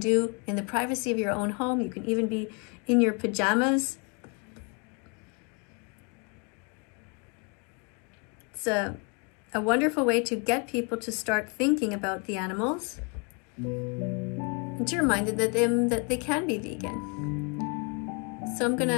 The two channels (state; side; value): quieter; right; 34.6 dB